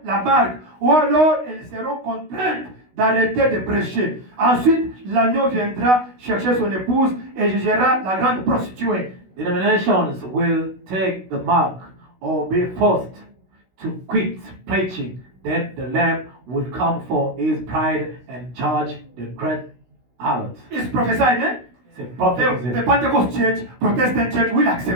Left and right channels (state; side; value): late; left; 16 ms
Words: la marque ou alors elles seront contraintes d'arrêter de prêcher. Ensuite, l'agneau viendra chercher son épouse et jugera la grande prostituée. Denominations will take the mark or be forced to quit preaching. Then the Lamb will come for his bride and judge the great harlot. It's prophesied, eh? C'est prophétisé. The Pentecost Church, Protestant Church will